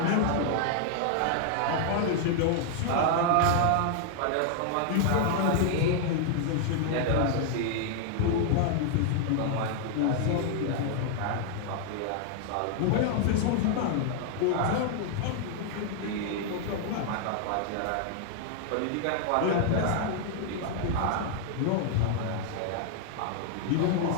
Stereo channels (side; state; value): both; different; correlation 0.00